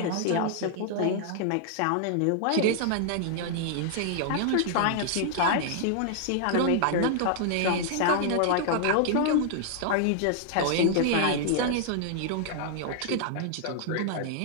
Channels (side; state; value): both; different; correlation -0.01